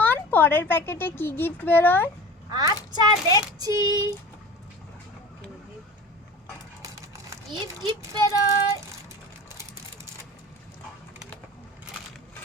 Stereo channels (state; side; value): normal; both; correlation 0.37